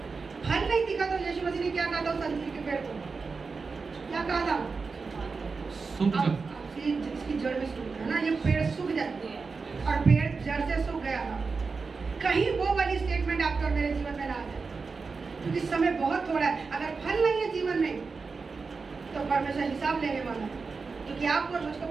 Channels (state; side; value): quieter; left; 4.6 dB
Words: फल नहीं दिखा तो यीशु मसीह ने क्या कहा था उस अंजीर के पेड़ को? क्या कहा था? इसकी जड़ में सूख गया ना, ये पेड़ सूख जाते हैं और पेड़ जड़ से सूख गया था। कहीं वो वाली स्टेटमेंट आपके और मेरे जीवन में ना आ जाए, क्योंकि समय बहुत थोड़ा है। अगर फल नहीं है जीवन में तो परमेश्वर हिसाब लेने वाला है, क्योंकि आपको और मुझको